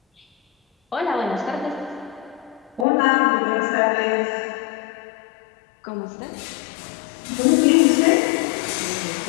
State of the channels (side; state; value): right; drops out; at 2.9 s